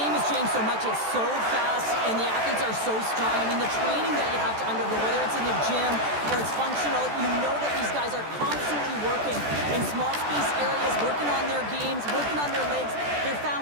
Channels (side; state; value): left; late; 14 ms